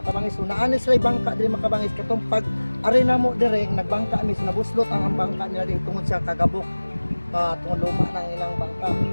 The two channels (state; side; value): inverted; both; correlation -1.00